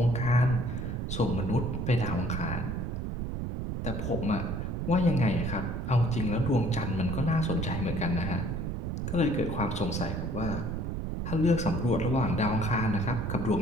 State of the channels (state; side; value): noise; right; rumble, 3 dB below the sound